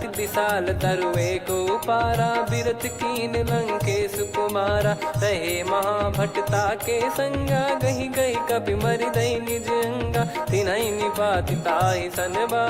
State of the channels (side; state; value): both; identical; correlation 1.00